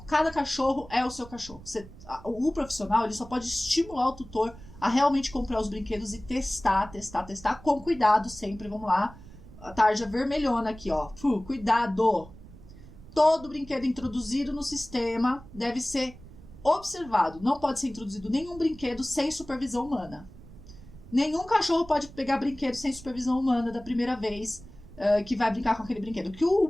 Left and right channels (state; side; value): noise; right; rumble, 18 dB below the sound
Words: Cada cachorro é o seu cachorro. O profissional ele só pode estimular o tutor a realmente comprar os brinquedos e testar, com cuidado sempre. Vamos lá, a tarja vermelhona aqui, ó. Cuidado! Todo brinquedo introduzido no sistema deve ser observado. Não pode ser introduzido nenhum brinquedo sem supervisão humana. Nenhum cachorro pode pegar brinquedo sem supervisão humana da primeira vez que vai brincar com aquele brinquedo. Que o